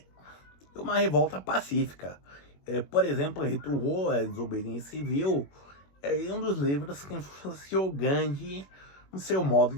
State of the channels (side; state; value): right; late; 21 ms